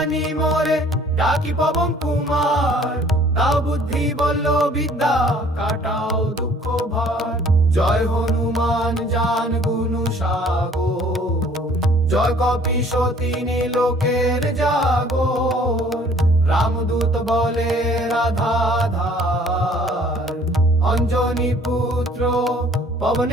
মোরে ডাকি পবন কুমার, দাও বুদ্ধি বল্ল বিদ্যা, কাটাও দুঃখ ভার। জয় হনুমান জান গুণ সাগর, জয় কপিশতী লোকের জাগর। রামদূত বলে রাধাধার, অঞ্জনী পুত্র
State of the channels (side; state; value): both; normal; correlation 0.55